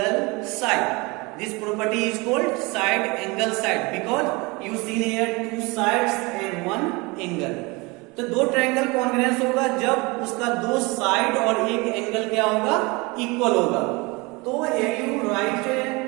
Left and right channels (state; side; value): quieter; left; 25.8 dB